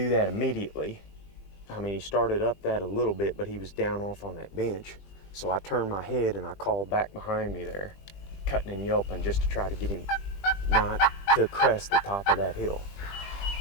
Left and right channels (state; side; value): late; right; 20 ms